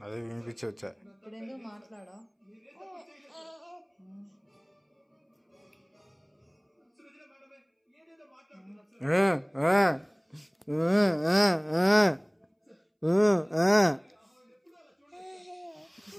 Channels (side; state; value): both; identical; correlation 1.00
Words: అదే వినిపించవచ్చా ఇప్పుడు ఎందుకు మాట్లాడా